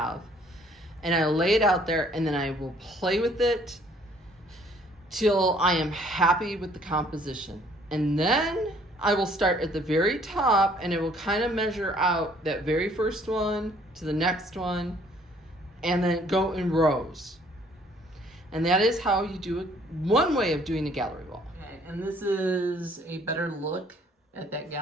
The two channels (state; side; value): normal; both; correlation 0.61